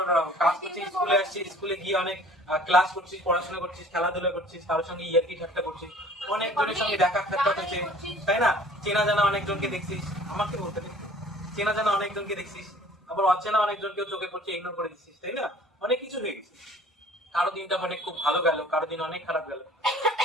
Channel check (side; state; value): both; normal; correlation 0.51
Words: কাজ করছিস, স্কুলে আসছিস, স্কুলে গিয়ে অনেক ক্লাস করছিস, পড়াশোনা করছিস, খেলাধুলা করছিস, কারোর সঙ্গে ইয়ার্কি ঠাট্টা করছিস, অনেকজনের সঙ্গে দেখা সাক্ষাৎ হয়েছে, তাই না? চেনা জানা অনেকজনকে দেখছিস, আমাকে বলতে দে। চেনা জানা অনেকজনকে দেখছিস, আবার অচেনা অনেকজনকেও চোখে পড়ছে, ইগনোর করে দিচ্ছিস, তাই না? অনেক কিছু হয়ে গেছে। কারো দিনটা মানে খুব ভালো গেল, কারো দিন অনেক খারাপ গেল।